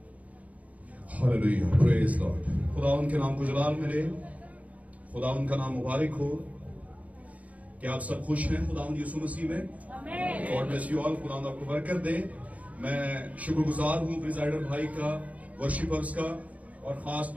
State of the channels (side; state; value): left; late; 0.070 ms